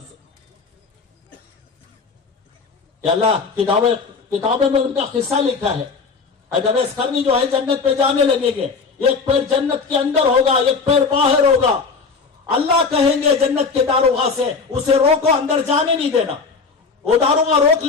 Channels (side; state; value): right; quieter; 4.8 dB